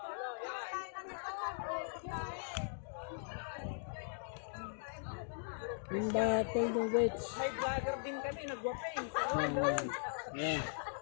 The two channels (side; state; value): right; silent; digital silence